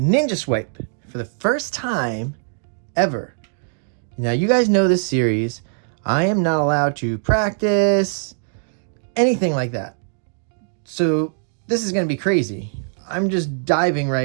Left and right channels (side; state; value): left; silent; digital silence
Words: swipe for the first time ever. Now you guys know this series. I am not allowed to practice anything like that. So this is going to be crazy. I'm just diving